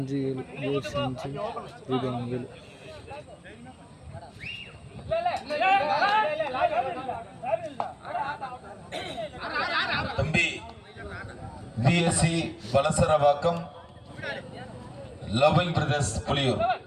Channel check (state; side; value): identical; both; correlation 1.00